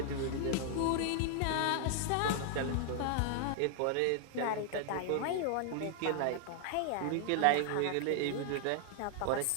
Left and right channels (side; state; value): both; different; correlation 0.00